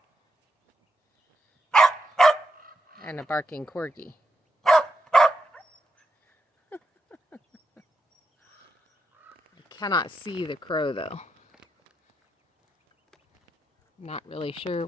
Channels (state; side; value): normal; both; correlation 0.84